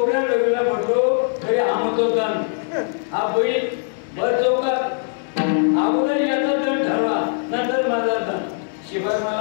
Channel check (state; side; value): silent; right; digital silence